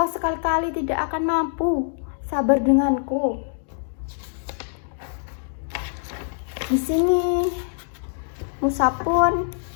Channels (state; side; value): silent; right; digital silence